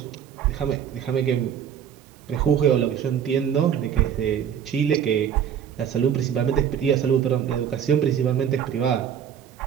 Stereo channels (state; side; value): quieter; left; 8.7 dB